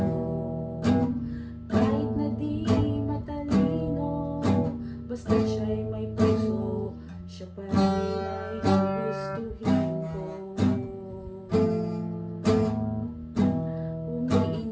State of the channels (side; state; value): both; identical; correlation 1.00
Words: kahit na di matalino, basta siya'y may puso, siya pa rin ay gugustuhin ko.